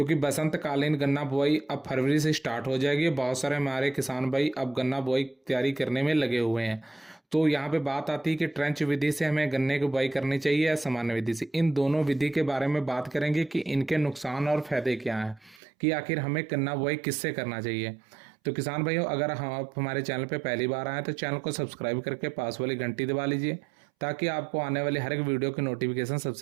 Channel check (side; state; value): left; drops out; at 15.6 s